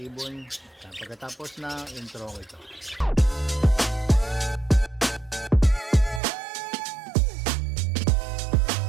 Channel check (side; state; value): left; drops out; at 6.2 s